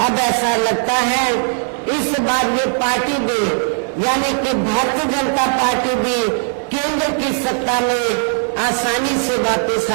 अब ऐसा लगता है इस बार ये पार्टी भी यानी कि भारतीय जनता पार्टी भी केंद्र की सत्ता में आसानी से वापस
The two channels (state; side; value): silent; left; 56 dB below the other